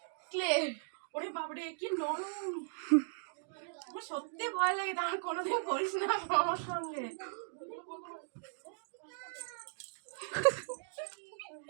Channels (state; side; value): silent; left; digital silence